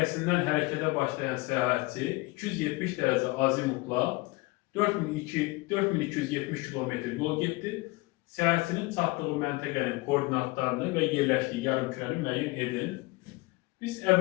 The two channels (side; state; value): right; quieter; 23.1 dB